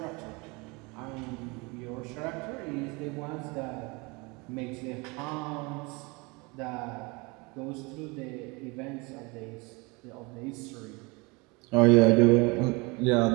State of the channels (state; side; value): quieter; left; 27.1 dB